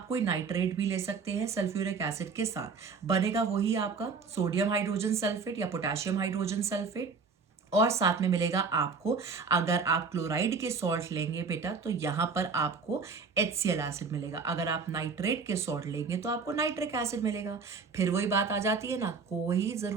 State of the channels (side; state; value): left; quieter; 4.9 dB